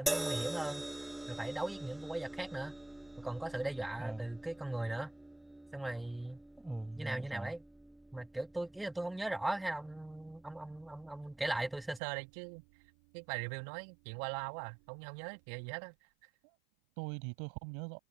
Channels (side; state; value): left; drops out; at 12.0 s